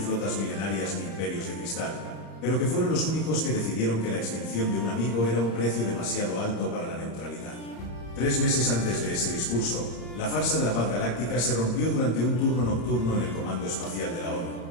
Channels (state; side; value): late; right; 34 ms